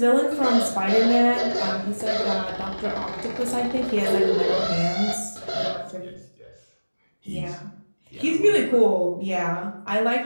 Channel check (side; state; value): both; inverted; correlation -1.00